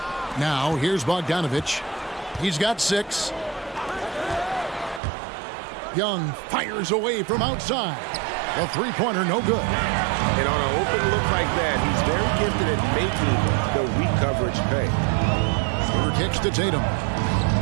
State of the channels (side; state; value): left; drops out; at 5.0 s